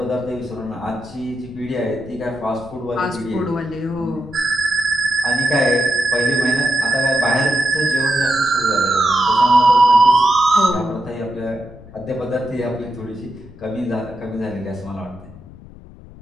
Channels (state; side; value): noise; left; rumble, 19 dB below the sound